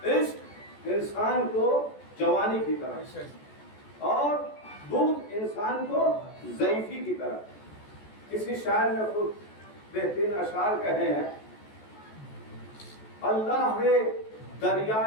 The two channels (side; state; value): right; late; 14 ms